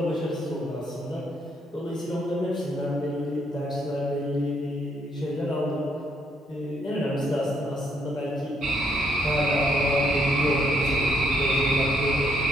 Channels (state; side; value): normal; both; correlation 0.72